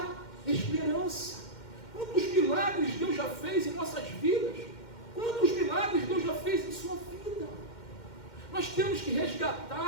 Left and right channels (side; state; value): right; late; 2.1 ms